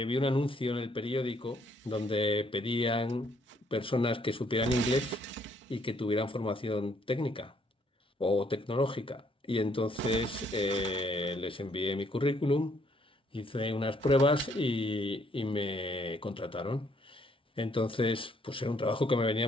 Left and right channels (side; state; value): both; normal; correlation 0.68